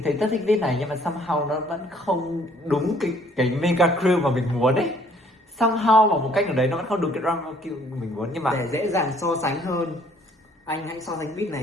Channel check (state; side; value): normal; both; correlation 0.61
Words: thấy rất thích viết này nhưng mà somehow nó vẫn không đúng cái mega crew mà mình muốn ấy. Somehow bằng một cách nào đấy nó vẫn không đúng cái drama kiểu mình muốn, nhưng mà Để dễ dàng so sánh hơn, anh hãy so sánh beat